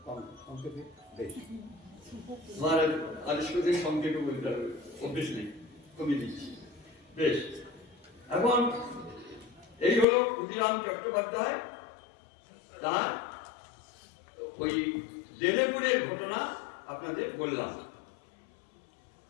সংক্ষেপে বেশ আমার আদেশ করতে সংক্ষেপে বলতে হবে, অভ্যেস নেই, কমিয়ে দিচ্ছি। বেশ, এখন এই হলো ক্ষুদিরাম চট্টোপাধ্যায়। তার ওই দেলেপুরের ঘটনা আপনাদের বললাম।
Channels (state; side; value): drops out; right; at 10.1 s